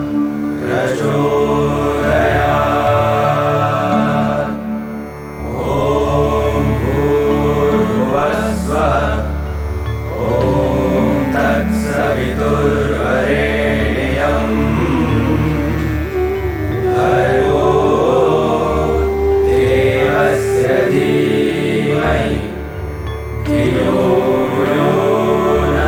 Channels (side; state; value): both; identical; correlation 1.00